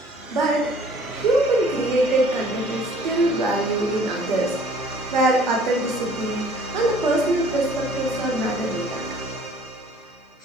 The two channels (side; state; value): both; normal; correlation 0.54